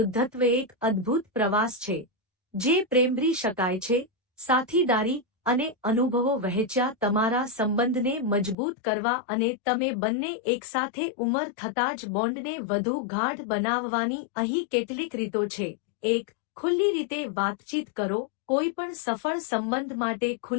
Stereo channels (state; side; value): drops out; right; at 8.6 s